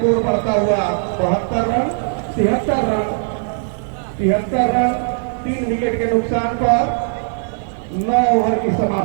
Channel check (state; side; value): silent; left; digital silence